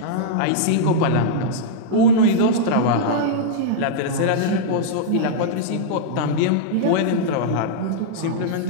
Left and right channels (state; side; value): different; both; correlation -0.02